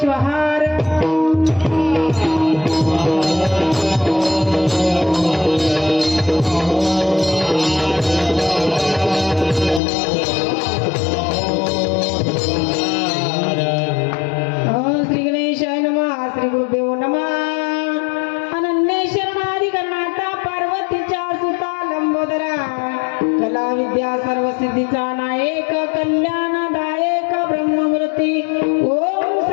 श्वहार श्री गणेशाय नमः श्री गुरुदेव नमः अनन्य शरणाधिकरणाता पार्वतीच्या सुता लंबोदरा कला विद्या सर्व सिद्धीचा नायक कल्याणदायक ब्रह्ममूर्ती ओम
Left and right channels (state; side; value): drops out; right; at 9.8 s